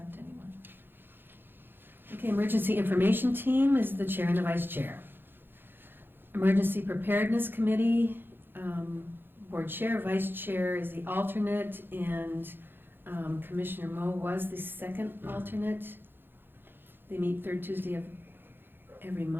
anyone. Okay, Emergency Information Team is the chair and the vice chair. Emergency Preparedness Committee, board chair, vice chair is the alternate, and Commissioner Moe was the second alternate. They meet third Tuesday of every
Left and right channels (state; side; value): late; left; 0.10 ms